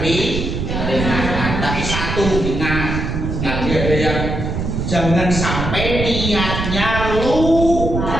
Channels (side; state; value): right; noise; rumble, 3 dB below the sound